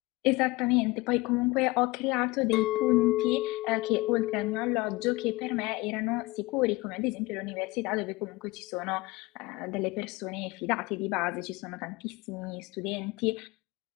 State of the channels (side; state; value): right; quieter; 21.8 dB